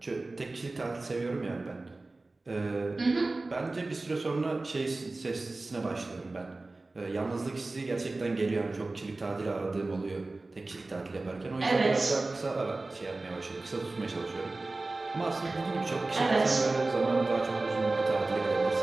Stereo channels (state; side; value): quieter; left; 3.2 dB